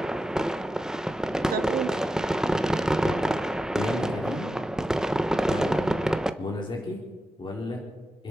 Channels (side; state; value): both; normal; correlation 0.90